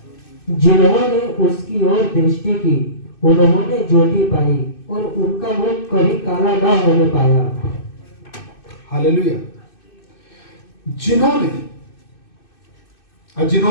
जिन्होंने उसकी ओर दृष्टि की उन्होंने ज्योति पाई और उनका मुख कभी काला न होने पाया। हालेलुया। जिन्होंने, और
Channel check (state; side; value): late; right; 2.6 ms